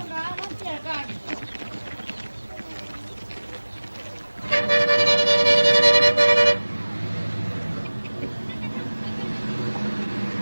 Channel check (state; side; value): inverted; both; correlation -1.00